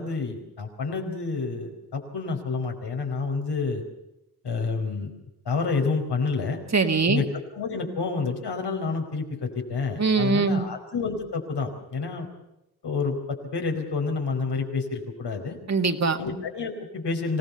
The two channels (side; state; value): both; normal; correlation 0.33